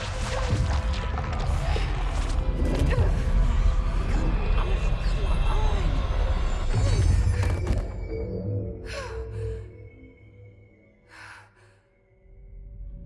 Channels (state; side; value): identical; both; correlation 1.00